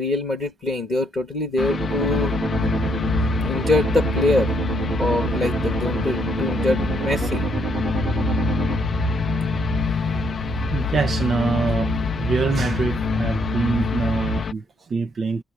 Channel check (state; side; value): normal; both; correlation 0.72